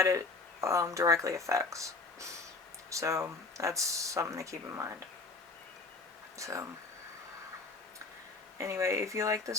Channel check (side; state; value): right; quieter; 3.7 dB